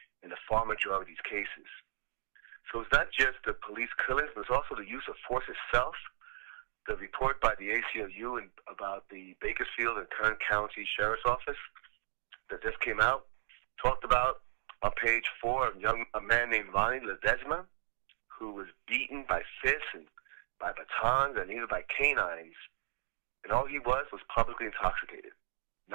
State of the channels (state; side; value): silent; left; digital silence